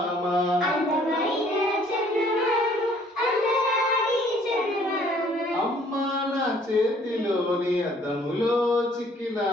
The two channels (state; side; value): normal; both; correlation 0.59